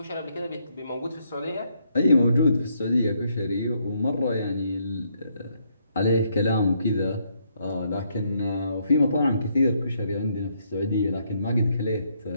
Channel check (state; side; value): inverted; both; correlation -0.74